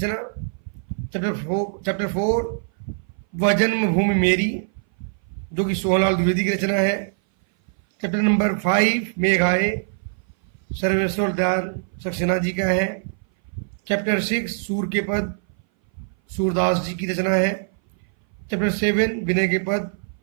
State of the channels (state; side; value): silent; left; 59 dB below the other